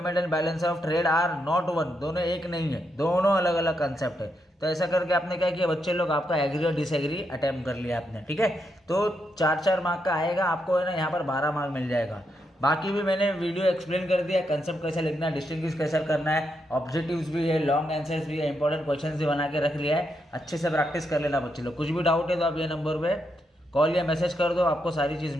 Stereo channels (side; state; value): both; normal; correlation 0.81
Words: and balance of trade are not one, दोनों एक नहीं है, दोनों अलग अलग कंसेप्ट है। तो ऐसा करके आपने क्या किया बच्चे लोग, आपका एग्री और डिसएग्री अटेम्प्ट कर लिया आपने। ठीक है, तो 4-4 मार्क का आएगा आपको, है ना, यहाँ पर 12 मार्क मिल जाएगा। बाकी भी मैंने वीडियो एक्सप्लेन कर दिया, कंसेप्ट कैसे लिखना है, डिस्टिंग्विश कैसे करना है, ऑब्जेक्टिव्स भी है, लॉन्ग आंसर्स भी है, इंपॉर्टेंट क्वेश्चंस भी बना के रख लिया है। अच्छे से प्रैक्टिस कर लेना बच्चे लोग। कुछ भी डाउट है तो आप ये नंबर पे कॉल या मैसेज कर दो, आपको सारी चीज़